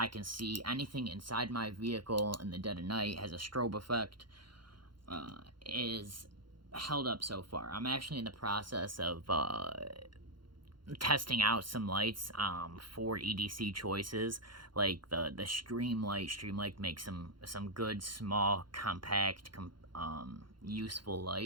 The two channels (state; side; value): late; left; 0.72 ms